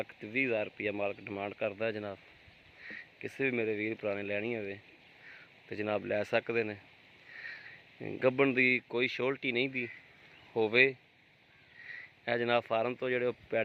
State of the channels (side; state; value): both; identical; correlation 1.00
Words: रुपया मालक डिमांड करता है जनाब। किसी भी मेरे वीर भरा ने लैनी होवे तो जनाब लै सकते ने। गब्बन दी कोई शोल्टी नहीं दी होवे। है जनाब फार्म तो जोड़े